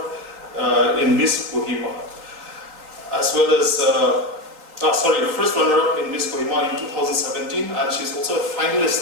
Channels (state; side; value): late; left; 3.8 ms